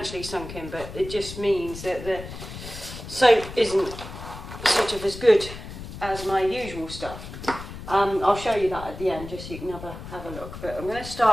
sunk in, but it just means that the soap isn't sort of as good as my usual stuff. I'll show you that at the end just so you can have a look. But I'm going to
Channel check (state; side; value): noise; left; rumble, 11 dB below the sound